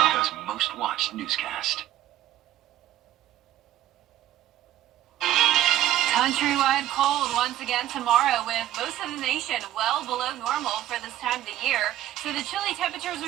most watched newscast. Countrywide cold once again tomorrow, with most of the nation well below normal for this time of the year. So the chilly temperatures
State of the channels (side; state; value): left; quieter; 13.2 dB